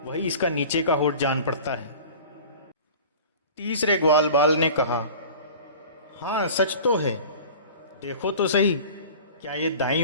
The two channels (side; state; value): both; inverted; correlation -0.41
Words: वही इसका नीचे का होठ जान पड़ता है। तीसरे ग्वाल बाल ने कहा, हाँ सच तो है, देखो तो सही, क्या ये दाईं